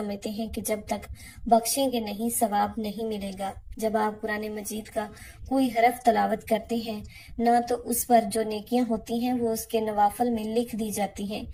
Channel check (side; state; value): both; identical; correlation 1.00